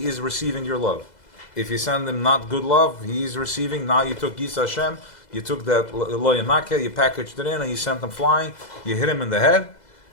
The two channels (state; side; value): late; right; 2.0 ms